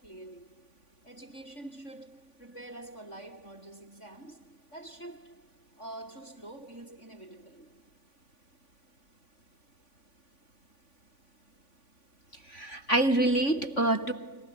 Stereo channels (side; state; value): right; late; 3.5 ms